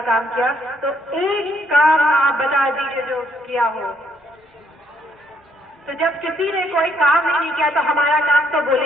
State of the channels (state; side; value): normal; both; correlation 0.70